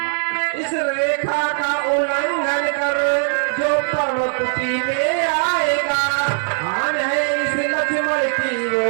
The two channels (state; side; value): silent; left; 66 dB below the other